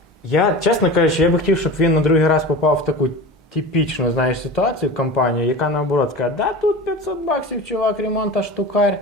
я, чесно кажучи, я би хотів, щоб він на другий раз попав в таку типічну, знаєш, ситуацію, компанію, яка наоборот каже, да тут $500, чувак, ремонта штукарь.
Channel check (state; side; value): normal; both; correlation 0.32